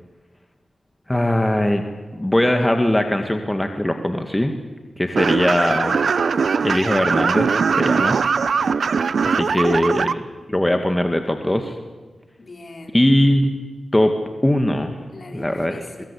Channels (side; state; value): both; normal; correlation 0.94